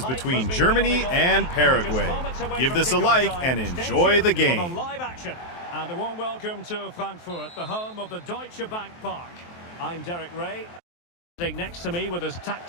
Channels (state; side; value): late; right; 23 ms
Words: between Germany and Paraguay. Give this a like and enjoy the game. And a warm welcome to Frankfurt, the home of the Deutsche Bank Park. I'm Derek Ray. Sitting next to me with his